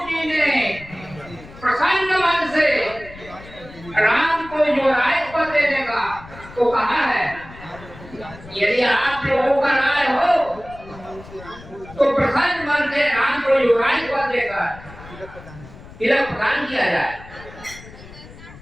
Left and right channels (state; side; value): noise; left; rumble, 18 dB below the sound